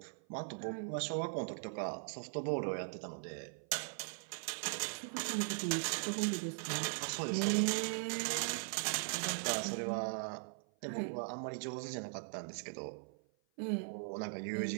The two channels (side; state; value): left; silent; 51 dB below the other